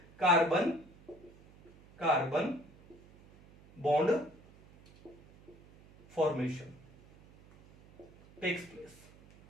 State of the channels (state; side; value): noise; right; hum, 24 dB below the sound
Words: carbon carbon bond formation takes